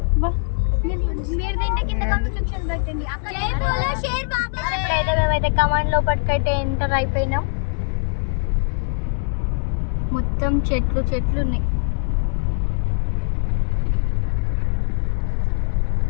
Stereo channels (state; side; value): silent; right; 64 dB below the other